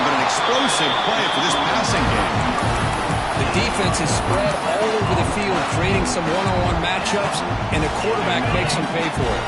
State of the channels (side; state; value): both; identical; correlation 1.00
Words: but an explosive play for this passing game. The defense is spread all over the field, creating some one-on-one matchups, and the quarterback makes them pay for it.